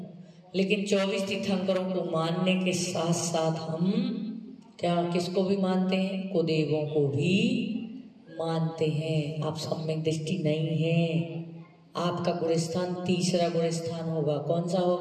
लेकिन 24 तीर्थंकरों को मानने के साथ साथ हम क्या किसको भी मानते हैं? कुदेवों को भी मानते हैं। आप सम्यक दृष्टि नहीं है। आपका गुणस्थान तीसरा गुणस्थान होगा। कौन सा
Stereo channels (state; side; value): identical; both; correlation 1.00